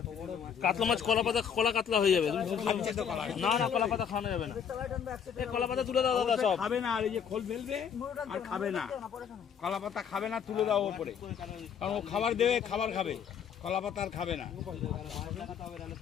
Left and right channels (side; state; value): right; quieter; 7.7 dB